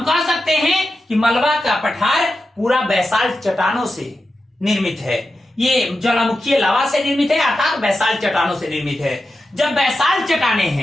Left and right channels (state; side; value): normal; both; correlation 0.90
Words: कह सकते हैं कि मलबा का पठार पूरा बेसाल्ट चट्टानों से निर्मित है। ये ज्वालामुखीय लावा से निर्मित है, अर्थात बेसाल्ट चट्टानों से निर्मित है। जब बेसाल्ट चट्टाने